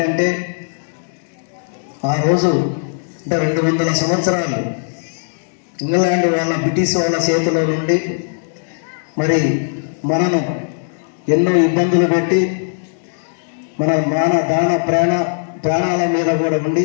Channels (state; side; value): silent; right; digital silence